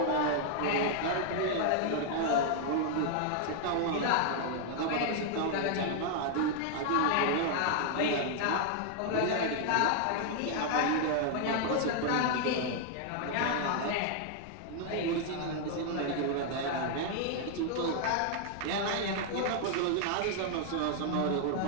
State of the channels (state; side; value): different; both; correlation 0.00